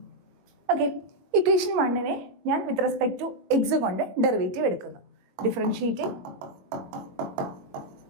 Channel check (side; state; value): left; late; 21 ms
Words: ഓക്കെ, ഇക്വേഷൻ 1നെ ഞാൻ വിത്ത് റെസ്പെക്ട് ടു എക്സ് കൊണ്ട് ഡെറിവേറ്റീവ് എടുക്കുന്നു. Differentiating